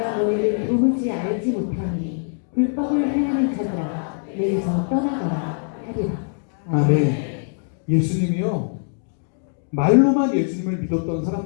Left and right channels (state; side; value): silent; right; digital silence